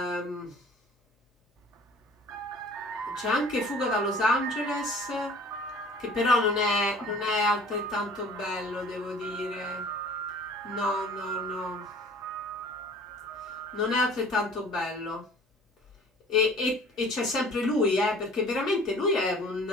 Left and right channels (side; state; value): both; normal; correlation 0.49